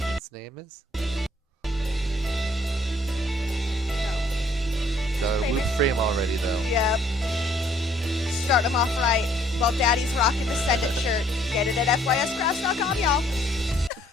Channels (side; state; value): both; normal; correlation 0.63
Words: name is? Got a loop frame already though. Yep. Start them off right. While Daddy's rocking the Send It shirt. Get it at FYScraps.com, y'all.